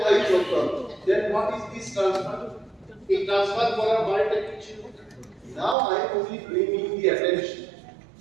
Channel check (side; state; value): left; drops out; at 5.8 s